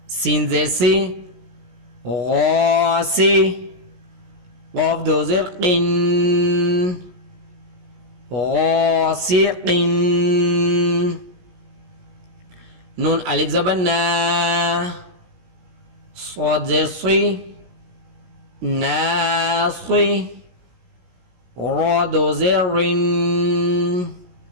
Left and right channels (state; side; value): late; left; 17 ms